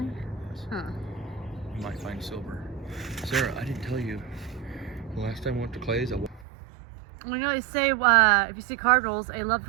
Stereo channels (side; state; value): left; drops out; at 6.5 s